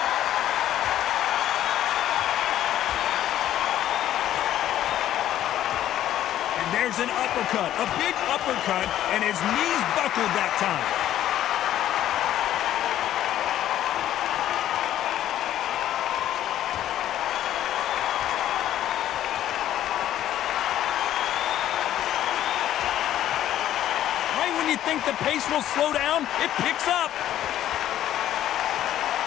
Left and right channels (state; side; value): quieter; right; 12.2 dB